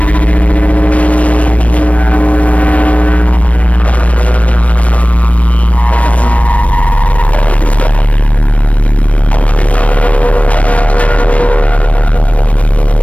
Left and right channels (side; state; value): right; late; 0.065 ms